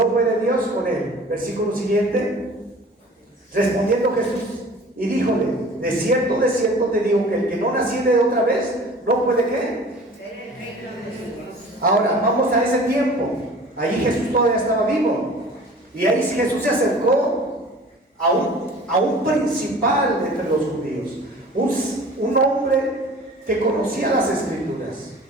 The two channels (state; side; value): normal; both; correlation 0.44